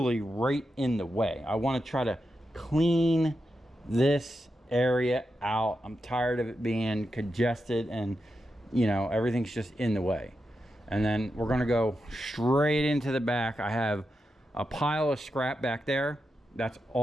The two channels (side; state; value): both; normal; correlation 0.88